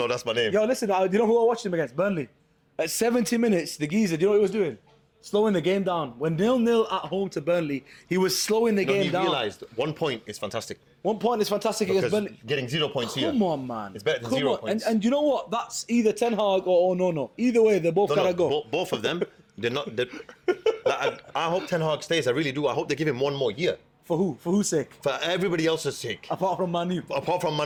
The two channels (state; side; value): identical; both; correlation 1.00